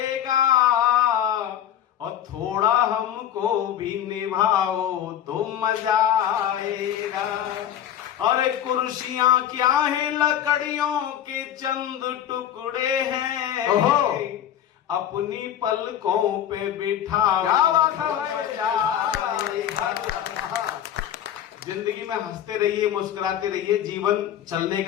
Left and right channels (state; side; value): quieter; right; 10.5 dB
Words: और थोड़ा हमको भी निभाओ तो मजा आएगा। अरे कुर्सियां क्या है, लकड़ियों के चंद टुकड़े हैं। अपनी पलकों पे बिठाओ। क्या बात है। जिंदगी में हंसते रहिए, मुस्कुराते रहिए। जीवन चलने